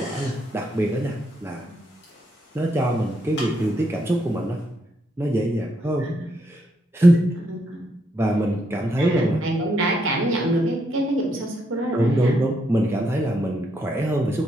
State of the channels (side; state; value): both; normal; correlation 0.77